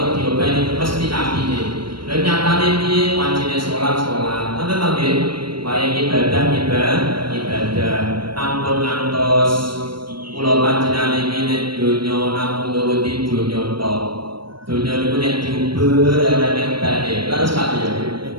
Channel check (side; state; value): left; late; 0.73 ms